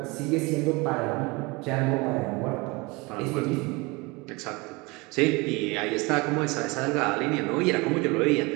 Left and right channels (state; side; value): quieter; left; 25.6 dB